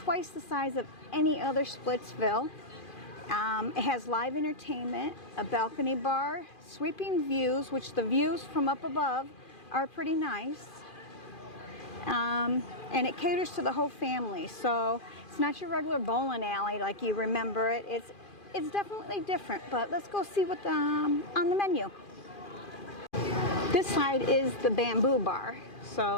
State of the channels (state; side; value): late; right; 2.4 ms